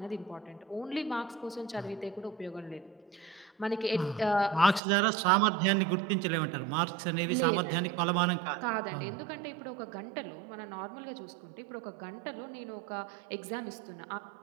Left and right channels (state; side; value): drops out; left; at 4.8 s